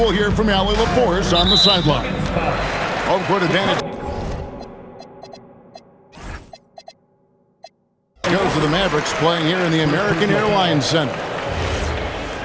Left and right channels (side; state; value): both; identical; correlation 1.00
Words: hear from Allie LaForce on the sideline. Home court advantage goes to the Mavericks, playing here in the American Airlines Center.